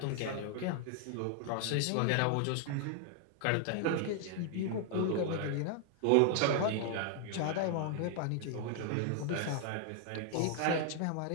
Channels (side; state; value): both; different; correlation 0.00